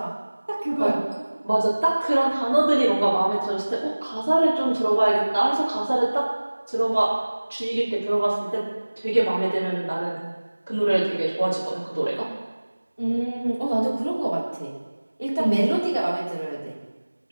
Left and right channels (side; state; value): both; inverted; correlation -1.00